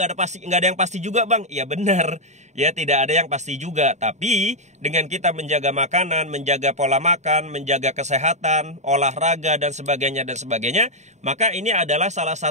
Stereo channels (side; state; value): left; late; 0.34 ms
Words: ada yang pasti juga bang. Iya benar, ya tidak ada yang pasti juga. Tapi dengan kita menjaga makanan, menjaga pola makan, menjaga kesehatan, olahraga dan sebagainya, maka ini adalah salah